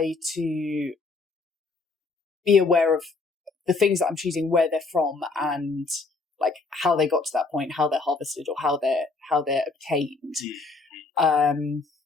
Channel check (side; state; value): right; quieter; 3.9 dB